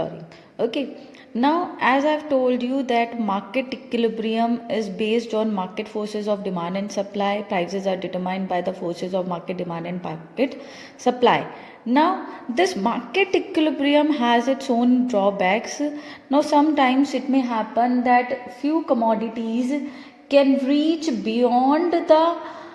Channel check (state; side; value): identical; both; correlation 1.00